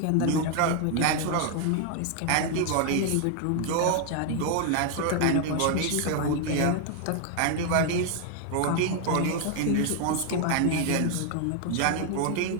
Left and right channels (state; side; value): different; both; correlation 0.00